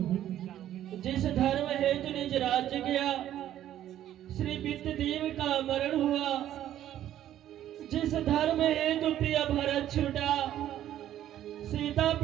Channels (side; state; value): left; quieter; 11.9 dB